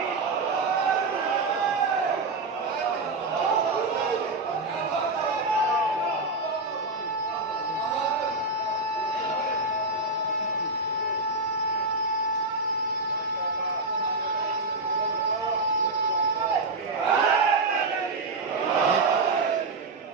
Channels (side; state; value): left; quieter; 3.3 dB